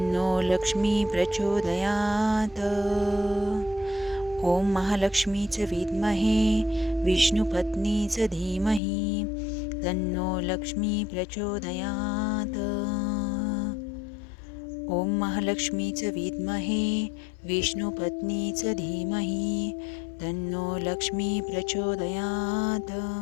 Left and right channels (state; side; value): drops out; right; at 8.8 s